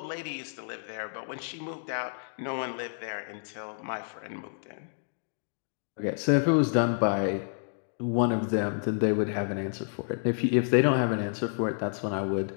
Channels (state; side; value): silent; right; digital silence